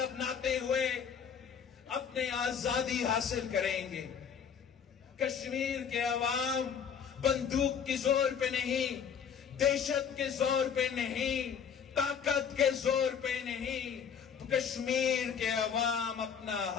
اپناتے ہوئے اپنی آزادی حاصل کریں گے۔ کشمیر کے عوام بندوق کے زور پہ نہیں، دہشت کے زور پہ نہیں، طاقت کے زور پہ نہیں، کشمیر کے عوام اپنا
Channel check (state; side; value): quieter; right; 7.3 dB